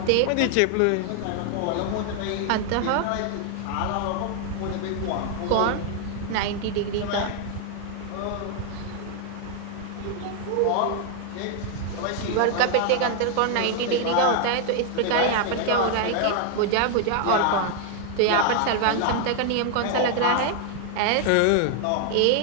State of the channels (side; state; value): both; different; correlation 0.00